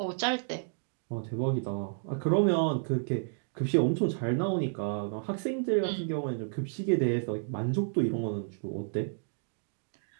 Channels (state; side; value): silent; left; digital silence